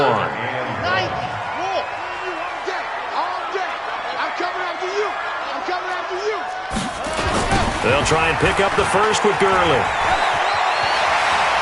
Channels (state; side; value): identical; both; correlation 1.00